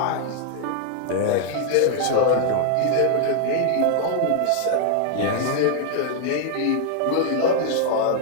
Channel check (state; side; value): different; both; correlation 0.00